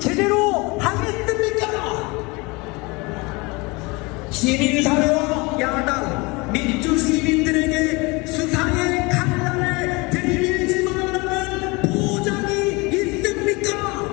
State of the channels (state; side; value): quieter; right; 26.0 dB